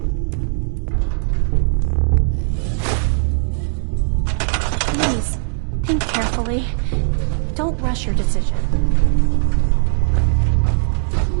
carefully. Don't rush your decision.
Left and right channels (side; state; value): left; silent; digital silence